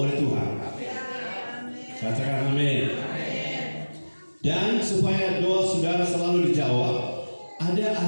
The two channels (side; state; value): both; inverted; correlation -1.00